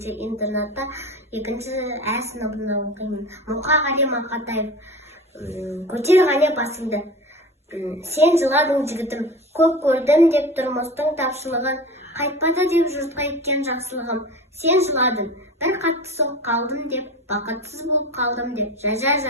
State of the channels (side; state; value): both; normal; correlation 0.33